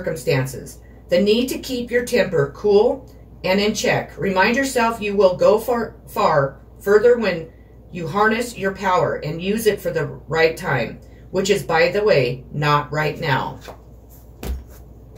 The need to keep your temper cool and in check. Remind yourself you will go far further when you harness your power and use it for the right time, which is, by the way, not right now.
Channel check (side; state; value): both; identical; correlation 1.00